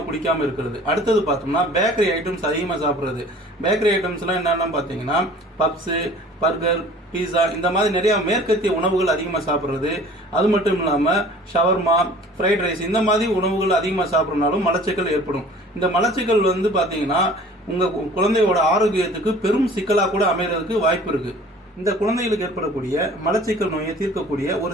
குடிக்காமல் இருக்கிறது. அடுத்தது பார்த்தோம்னா பேக்கரி ஐட்டம்ஸ் அதிகமாக சாப்பிட்றது. பேக்கரி ஐட்டம்ஸ்லாம் என்னென்னு பார்த்தீங்கன்னா பப்ஸு, பர்கர், பீஸா இந்த மாதிரி நிறையா மேற்கத்திய உணவுகள் அதிகமாக சாப்பிட்றது. அது மட்டும் இல்லாமல் ஷவர்மா, ஃப்ரைட் ரைஸ் இந்த மாதிரி உணவுகள் அதிகமாக சாப்பிட்றதுனாலும் மலச்சிக்கல் ஏற்படும். இந்த மலச்சிக்கல் பார்த்தீங்கன்னா உங்கள் குழந்தையோட ஆரோக்கியத்துக்கு பெரும் சிக்கலாக கூட அமைகிறதுக்கு வாய்ப்பு இருக்குது. இந்த குழந்தைகளுக்கு ஏற்படக்கூடிய மலச்சிக்கல் நோயை தீர்க்கக்கூடிய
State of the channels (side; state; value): both; normal; correlation 0.47